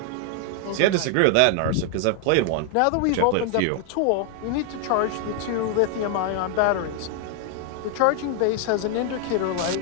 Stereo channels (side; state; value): both; different; correlation 0.00